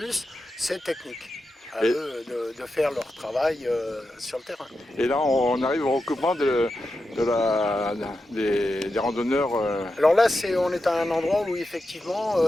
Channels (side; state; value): both; normal; correlation 0.89